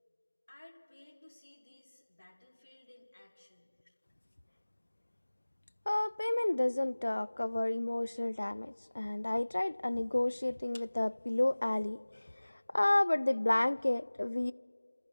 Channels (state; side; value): inverted; both; correlation -1.00